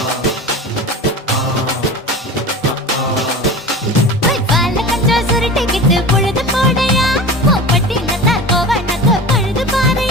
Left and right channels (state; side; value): normal; both; correlation 0.33